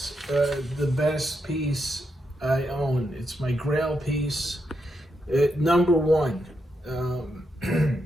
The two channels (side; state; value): both; normal; correlation 0.83